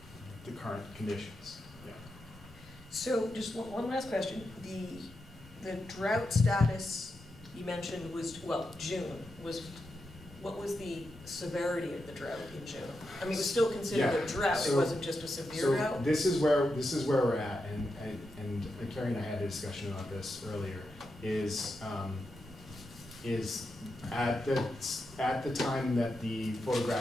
current conditions. Yeah. So just one last question. The drought status you mentioned was, well, June, what was the severity of the drought in June? I mean, it was still considered a Yeah, drought, it so- wasn't just a severe So drought? this is where we're at, and Carrie and I had a discussion about this earlier, is at the time that the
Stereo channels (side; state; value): both; normal; correlation 0.87